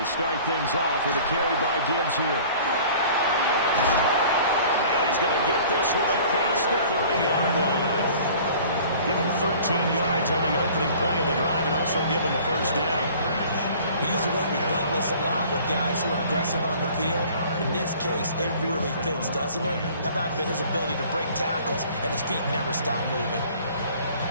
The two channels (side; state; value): both; inverted; correlation -0.49